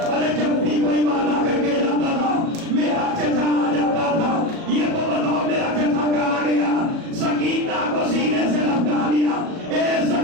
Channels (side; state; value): left; late; 37 ms